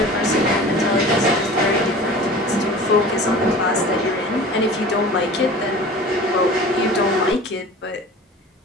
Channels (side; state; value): both; normal; correlation 0.40